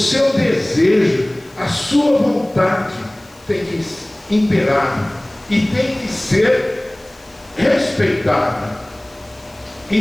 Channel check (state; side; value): noise; left; hiss, 28 dB below the sound